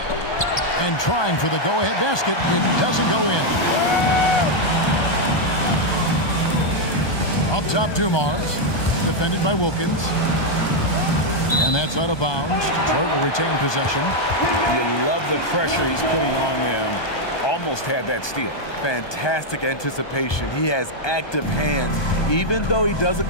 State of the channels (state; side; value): late; right; 1.2 ms